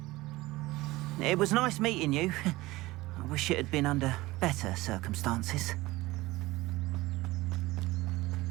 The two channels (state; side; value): quieter; left; 19.5 dB